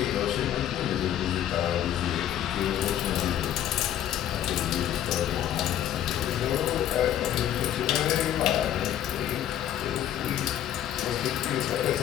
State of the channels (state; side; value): quieter; right; 11.3 dB